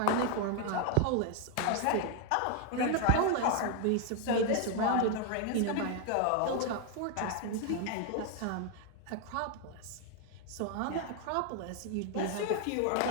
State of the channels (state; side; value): different; both; correlation 0.01